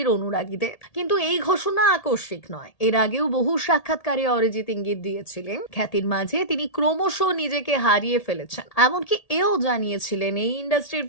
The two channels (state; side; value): late; right; 1.8 ms